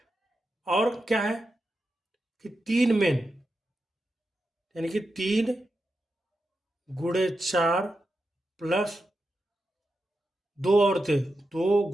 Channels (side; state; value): both; normal; correlation 0.89